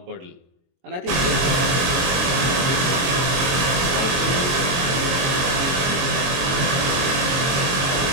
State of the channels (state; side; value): late; left; 22 ms